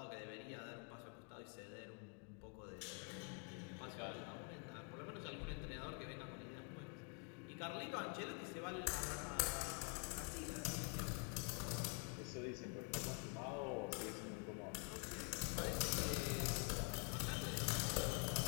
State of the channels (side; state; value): right; quieter; 38.1 dB